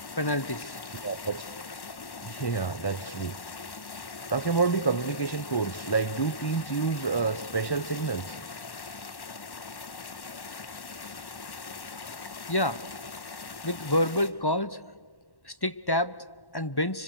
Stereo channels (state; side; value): late; right; 1.1 ms